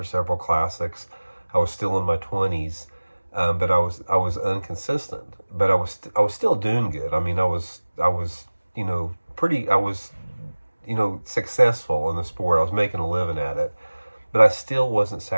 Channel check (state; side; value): inverted; both; correlation -1.00